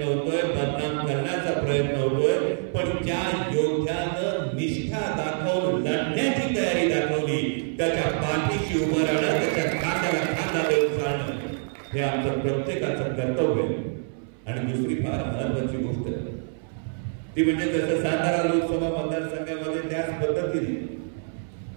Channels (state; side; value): silent; left; 61 dB below the other